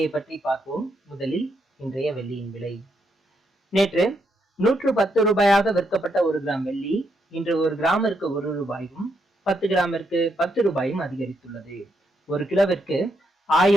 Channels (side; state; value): both; normal; correlation 0.78